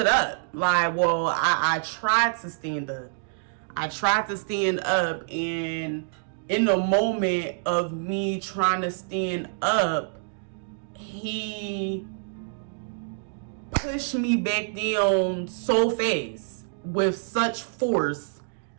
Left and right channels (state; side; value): silent; left; digital silence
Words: up. Like, well, I tried to stand up. And in the moment of me trying to stand up, he pushed me back down so fast with such force